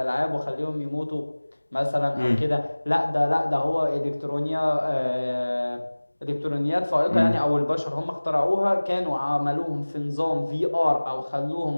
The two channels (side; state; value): both; inverted; correlation -1.00